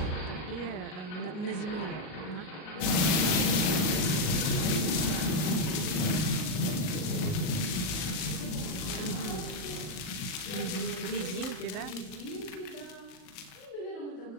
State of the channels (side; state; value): right; late; 39 ms